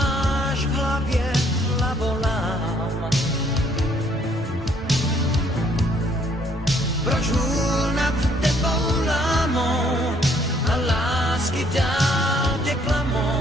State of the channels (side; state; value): both; normal; correlation 0.65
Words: v hlavě hlavolám. Proč hůl nad tebou lámou a lásky dál tě